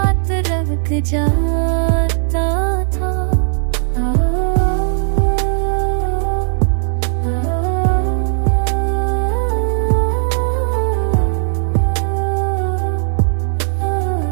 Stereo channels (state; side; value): silent; left; digital silence